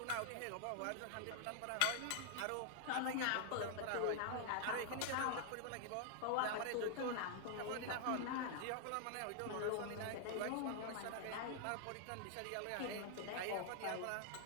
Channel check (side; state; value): both; different; correlation 0.00